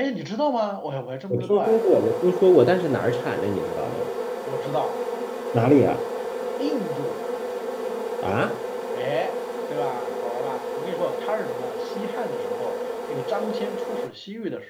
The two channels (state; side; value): identical; both; correlation 1.00